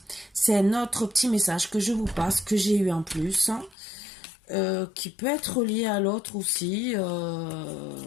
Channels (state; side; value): drops out; right; at 3.8 s